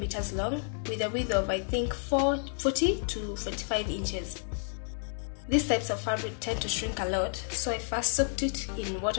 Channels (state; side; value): silent; right; 57 dB below the other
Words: long with a width of I think 40 to 45 inches. These types of fabric tend to shrink a lot, so I first soaked it in